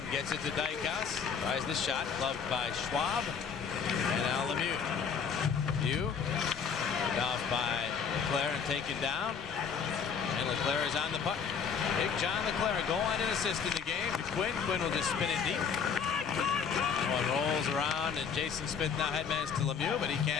gets it to Dykhouse. Tries the shot. Gloved by Schwab. And now Lemieux. Lemieux. Off by Leclerc and taken down. And Leclerc is on the puck. Big John Leclerc, goal line and assist in the game to Quinn. Quinn will just spin it deep. One rolls around, and Jason Smith now headmans to Lemieux, but he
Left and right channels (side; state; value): right; quieter; 6.5 dB